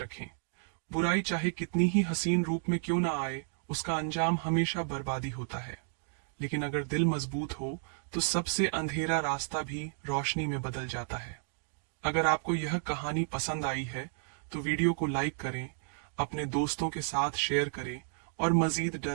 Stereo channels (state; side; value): silent; left; digital silence